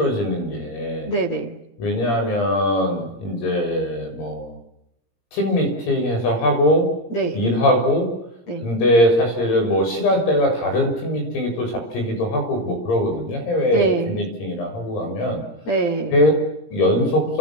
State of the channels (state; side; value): late; right; 17 ms